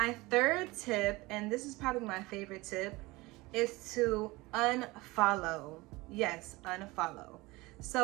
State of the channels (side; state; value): left; quieter; 21.8 dB